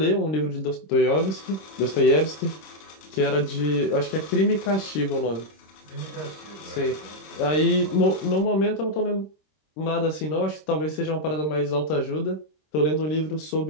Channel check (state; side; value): late; right; 26 ms